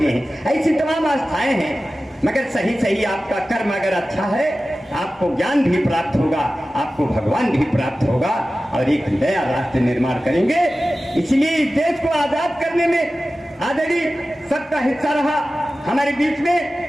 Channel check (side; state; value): both; normal; correlation 0.95